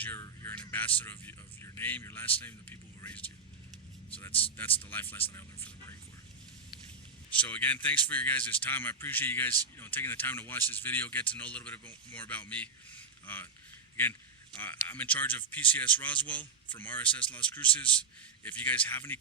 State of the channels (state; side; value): quieter; left; 4.4 dB